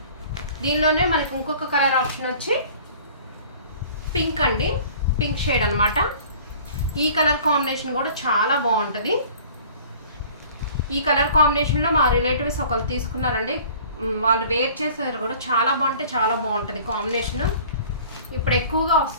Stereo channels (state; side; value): inverted; both; correlation -0.48